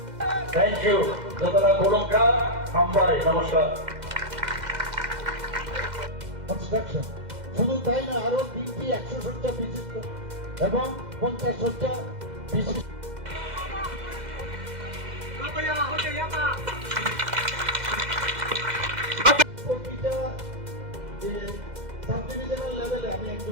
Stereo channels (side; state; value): left; late; 2.0 ms